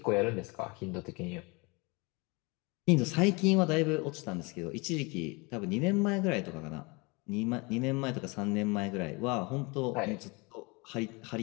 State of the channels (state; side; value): quieter; right; 27.6 dB